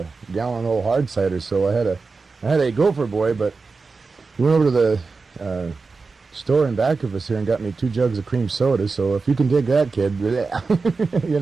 gallon old hard cider, so I had a gopher boy. But we went over to the store in back of us here and got me 2 jugs of cream soda. So if you can dig that, kid, you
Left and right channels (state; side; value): quieter; left; 4.3 dB